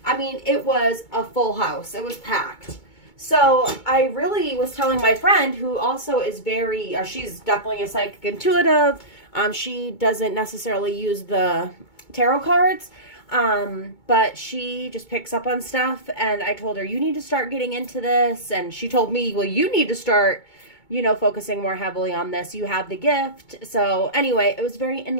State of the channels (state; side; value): late; right; 2.2 ms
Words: I mean, it was a full house. It was packed. So I really was telling my friend, who also is very, she's definitely a psychic intuitive. She doesn't necessarily use the tarot cards, but she just picks up on stuff. And I told her, you need to start getting into this. And she told me, well, you need to start, focusing more heavily on this. You have the gift. So anyway, it was very